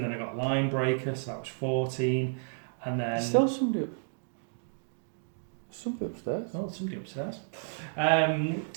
then I got line breaker, so that was 14, and then Still somebody upstairs. oh, somebody upstairs.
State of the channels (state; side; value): silent; left; digital silence